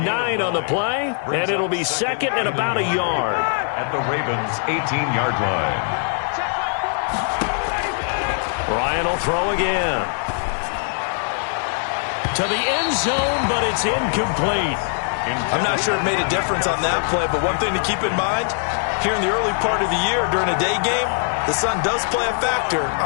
9 on the play, and it'll be 2nd and about a yard. At the Ravens' 18-yard line. Ryan will throw again. To the end zone, but it's incomplete. I'm not sure it made a difference on that play, but one thing to keep in mind, here in the early part of the year during a day game, the sun does play a factor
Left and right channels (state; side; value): silent; right; 60 dB below the other